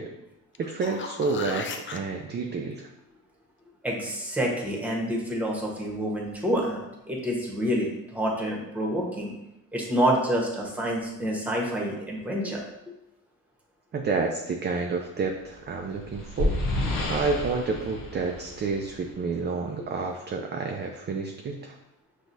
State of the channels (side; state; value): both; normal; correlation 0.42